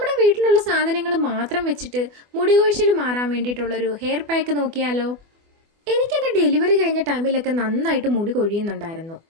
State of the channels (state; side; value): late; left; 24 ms